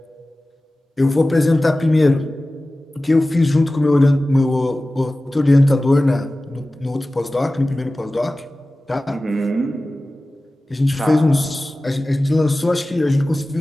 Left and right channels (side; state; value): both; normal; correlation 0.96